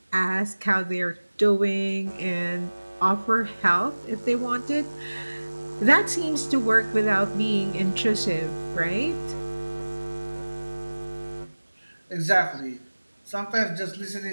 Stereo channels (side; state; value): both; inverted; correlation -1.00